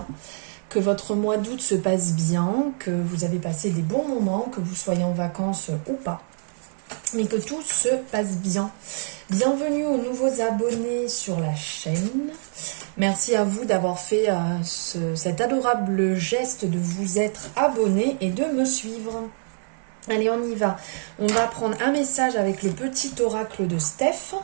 que votre mois d'août se passe bien, que vous avez passé des bons moments, que vous soyez en vacances ou pas, mais que tout se passe bien. Bienvenue aux nouveaux abonnés sur la chaîne. Merci à vous d'avoir fait cet adorable geste de vous être abonné et de me suivre. Allez, on y va. On va prendre un message avec le petit oracle de Steph.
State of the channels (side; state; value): left; silent; 62 dB below the other